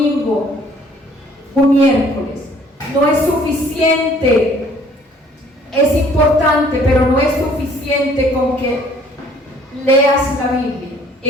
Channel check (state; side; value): normal; both; correlation 0.58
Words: un miércoles. No es suficiente, es importante, pero no es suficiente con que leas la Biblia.